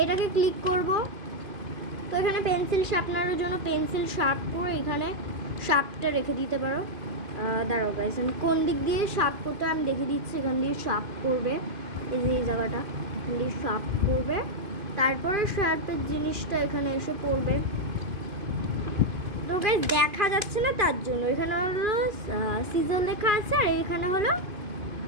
এটাকে ক্লিক করব। তো এখানে পেন্সিল শার্পনারের জন্য পেন্সিল শার্প করে এখানে শার্পটা রেখে দিতে পারো। দাঁড়াও গাইস, আমি কোন দিক দিয়ে শার্প করতে আমি দেখে দিচ্ছি। এখান দিয়ে শার্প করবে, এই যে এই জায়গাটা দিয়ে শার্প করবে, তারপরে শার্পের জিনিসটা এখানে এসে পড়বে। তো গাইস দেখা যাচ্ছে না, তার জন্য এখানে হলো সিজার লেখা আছে, আর এখানে হলো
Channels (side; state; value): left; late; 2.5 ms